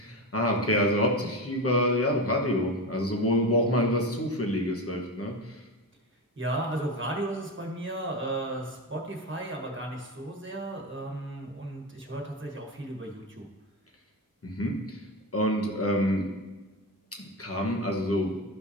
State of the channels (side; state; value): both; normal; correlation 0.20